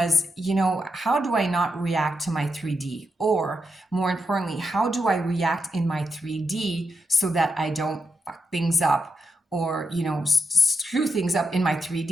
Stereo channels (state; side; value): normal; both; correlation 0.84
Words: how do I not react to my 3D? Or more importantly, how do I react in my 3D so that I don't fuck things up or, screw things up in my